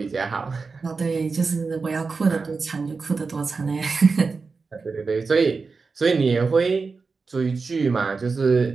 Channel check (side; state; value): left; quieter; 4.5 dB